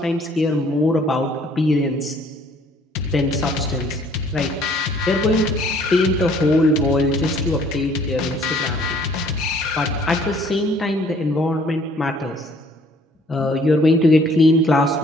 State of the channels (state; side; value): normal; both; correlation 0.59